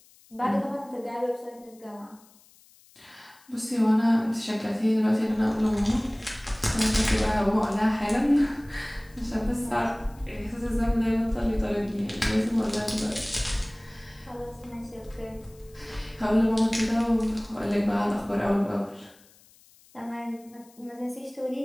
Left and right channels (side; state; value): left; noise; hiss, 28 dB below the sound